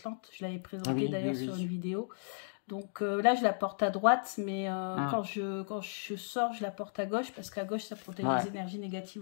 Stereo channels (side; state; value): right; silent; digital silence